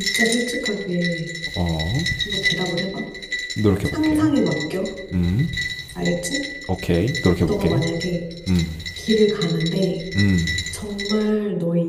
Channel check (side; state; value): both; identical; correlation 1.00